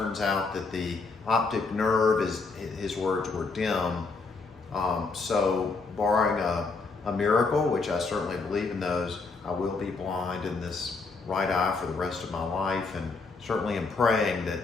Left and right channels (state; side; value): quieter; right; 4.1 dB